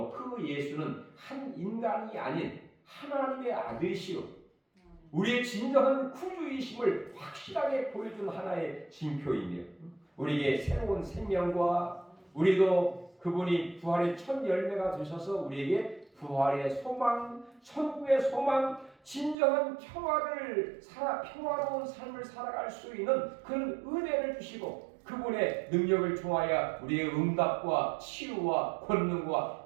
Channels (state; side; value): drops out; left; at 19.4 s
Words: 그 예수는 한 인간이 아닌 하나님의 아들이시오 우리의 진정한 구주이심을 확실하게 보여준 하나의 징표이며 우리에게 새로운 생명과 우리도 그분이 부활의 첫 열매가 되셔서 우리에게 부활의 소망, 천국의 소망, 진정한 평화로운 삶을 살아갈 수 있는 그런 은혜를 주시고 그분의 능력을 통하여 우리의 응답과 치유와 권능과